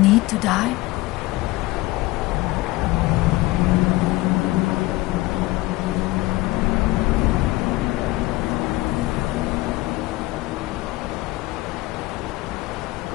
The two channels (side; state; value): right; quieter; 19.4 dB